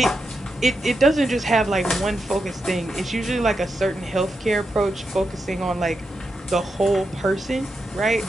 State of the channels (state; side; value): normal; both; correlation 0.87